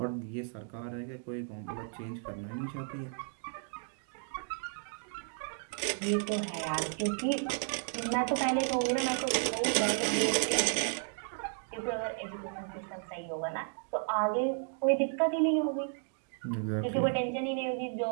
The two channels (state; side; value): silent; left; 55 dB below the other